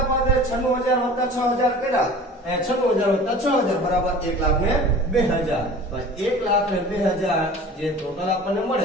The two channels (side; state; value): both; normal; correlation 0.42